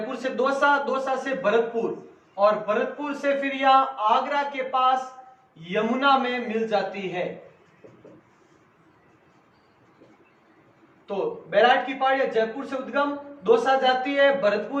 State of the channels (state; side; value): identical; both; correlation 1.00